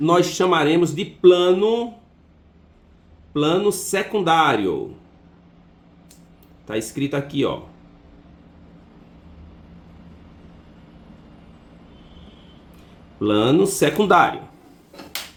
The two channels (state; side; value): identical; both; correlation 1.00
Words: chamaremos de plano secundário. Está escrito aqui, ó. Plano secundário.